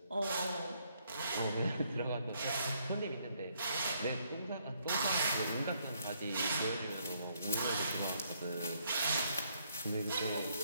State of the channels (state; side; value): inverted; both; correlation -0.71